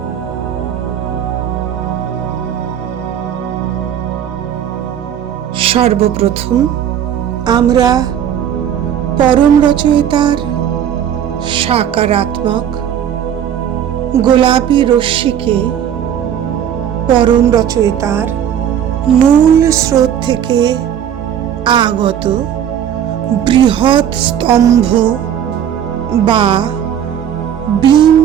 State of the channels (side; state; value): left; quieter; 9.5 dB